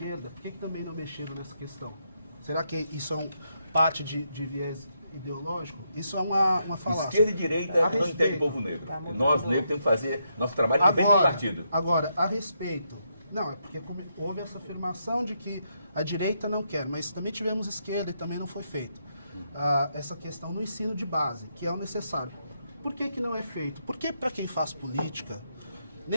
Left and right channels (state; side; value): inverted; both; correlation -0.80